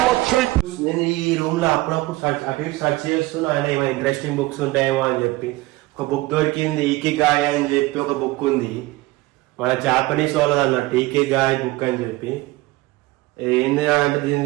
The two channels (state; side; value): quieter; left; 19.8 dB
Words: I take. నేను ఈ రూమ్ లో అప్పుడప్పుడు అటు ఇటు సర్చ్ చేస్తున్నా, ఆయన ఏమైనా ఇంట్రెస్టింగ్ బుక్స్ ఉంటాయేమో అని చెప్పి. ఒక బుక్ దొరికింది, ఈకిగాయ్ అని చెప్పి ఒక బుక్ ఉంది, మన జాపనీస్ వాళ్ళది అన్నట్టు, ఈకిగాయ్ బుక్ అని చెప్పి. ఏంది అంటే